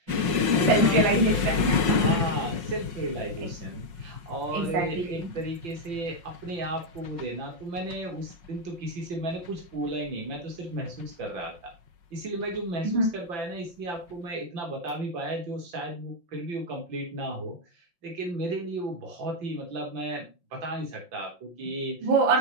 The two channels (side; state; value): left; late; 5.5 ms